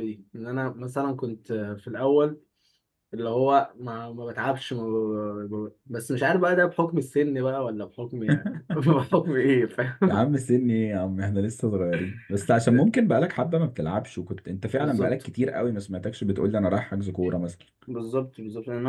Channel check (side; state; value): both; identical; correlation 1.00